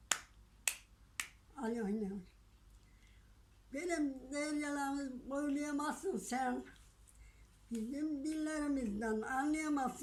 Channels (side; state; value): both; identical; correlation 1.00